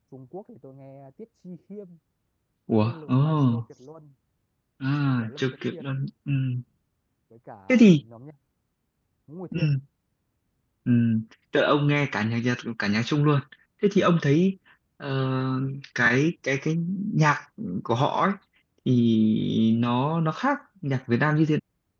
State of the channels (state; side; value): identical; both; correlation 1.00